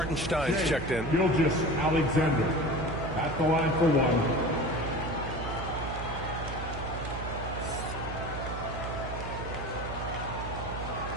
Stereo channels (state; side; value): noise; right; hum, 7 dB below the sound